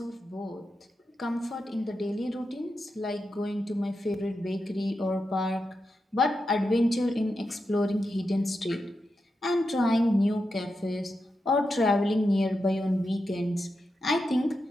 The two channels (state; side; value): normal; both; correlation 0.88